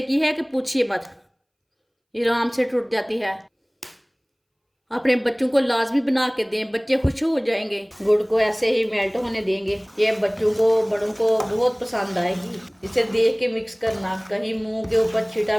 की है कि पूछिए मत। ये आराम से टूट जाती है। अपने बच्चों को लाजमी बना के दें, बच्चे खुश हो जाएंगे। गुड़ को ऐसे ही मेल्ट होने देंगे। ये बच्चों को बड़ों को बहुत पसंद आएगी। इसे देख के मिक्स करना, कहीं मुंह के ऊपर छींटा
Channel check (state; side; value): identical; both; correlation 1.00